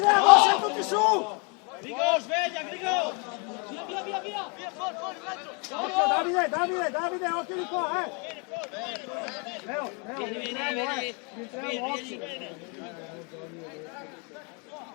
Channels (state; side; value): quieter; right; 33.7 dB